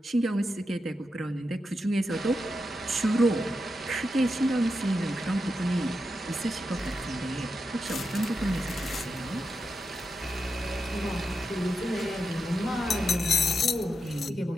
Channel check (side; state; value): both; normal; correlation 0.87